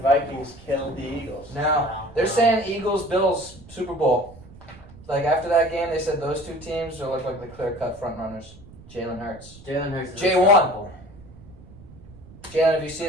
Vikings killed the Eagles. No, they're saying Eagles Bills Super Bowl. Like after that game, they said those 2 teams will look like the clear-cut front runners. Jalen Hurts. Jalen Hurts is J1. unstoppable. Jalen, if you see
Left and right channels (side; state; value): right; noise; rumble, 20 dB below the sound